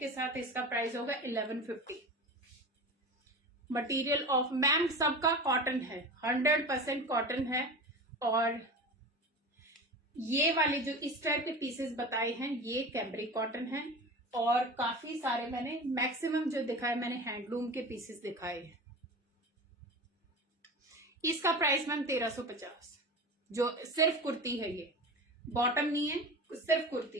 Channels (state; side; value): normal; both; correlation 0.31